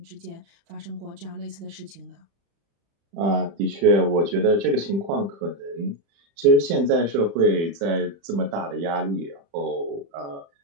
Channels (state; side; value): late; left; 35 ms